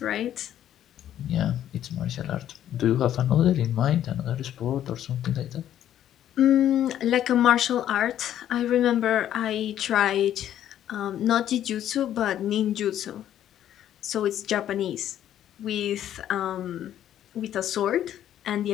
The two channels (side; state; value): right; quieter; 11.2 dB